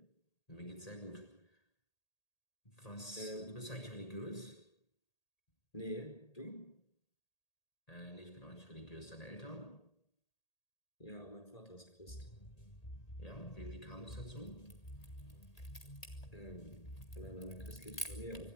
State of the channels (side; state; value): right; late; 1.8 ms